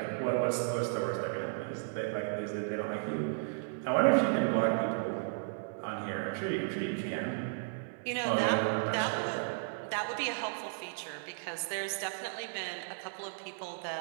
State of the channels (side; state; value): left; silent; digital silence